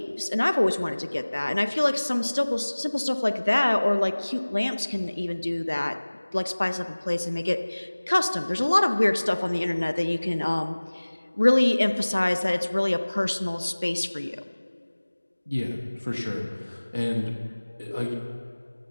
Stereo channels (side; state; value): both; inverted; correlation -1.00